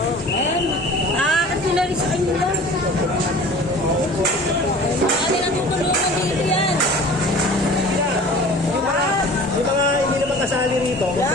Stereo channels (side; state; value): both; normal; correlation 0.43